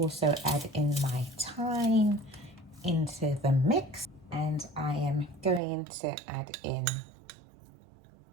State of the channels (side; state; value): left; drops out; at 5.6 s